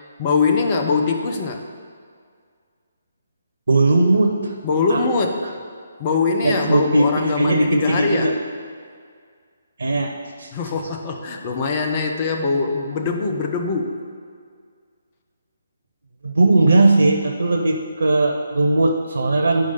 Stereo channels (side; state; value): both; inverted; correlation -0.79